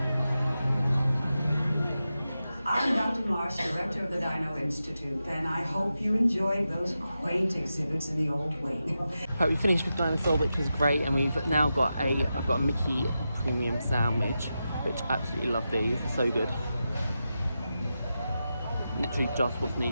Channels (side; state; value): both; inverted; correlation -0.90